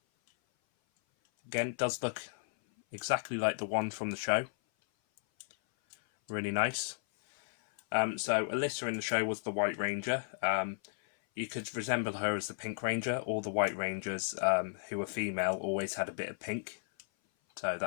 Again, does look exactly like the one from the show. Really nice. So Alyssa in the show was the White Ranger. You could resemble her as the Pink Ranger. All the White Rangers who were female always had a bit of pink so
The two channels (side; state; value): right; silent; 55 dB below the other